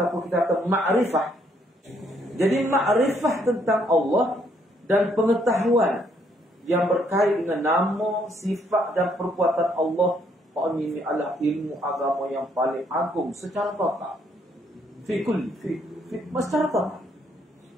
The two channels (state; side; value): normal; both; correlation 0.69